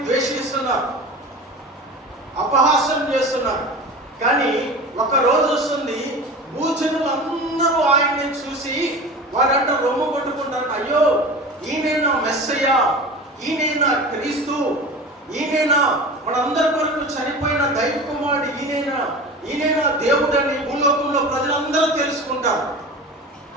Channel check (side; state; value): both; normal; correlation 0.33